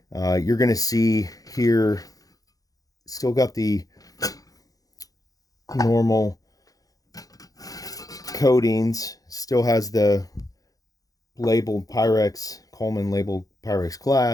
You're going to see here, still got the normal coatings, still has the labeled Pyrex, Coleman labeled Pyrex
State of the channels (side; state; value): right; late; 0.17 ms